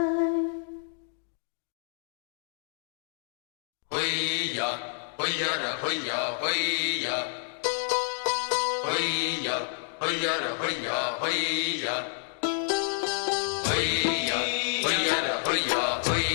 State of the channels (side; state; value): right; silent; digital silence